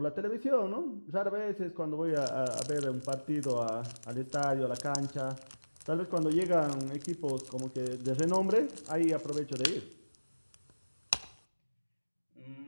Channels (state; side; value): inverted; both; correlation -1.00